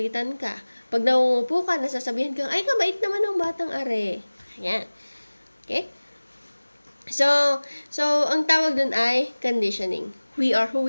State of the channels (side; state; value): both; inverted; correlation -1.00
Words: ka. Pag nangungupo ka, nasasabihan ka, ay, kabait naman ng batang are. Ayan. Okay? So, ang tawag dun ay conditioning. We are who